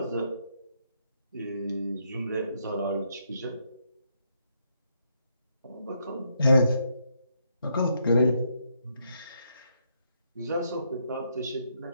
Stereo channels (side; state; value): both; inverted; correlation -0.76